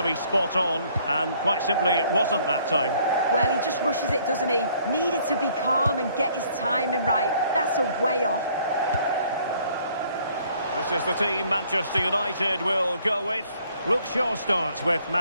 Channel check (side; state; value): both; inverted; correlation -0.62